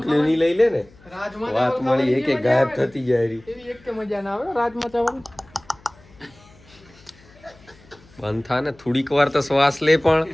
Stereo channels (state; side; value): noise; left; hum, 26 dB below the sound